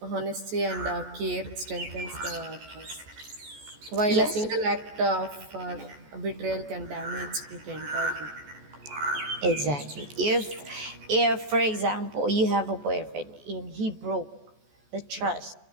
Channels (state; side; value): late; left; 14 ms